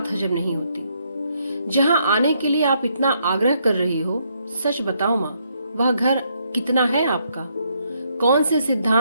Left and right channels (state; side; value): inverted; both; correlation -0.74